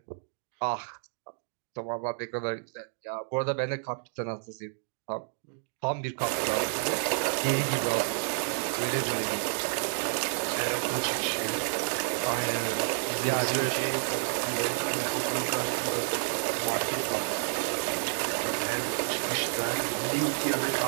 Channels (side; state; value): left; silent; digital silence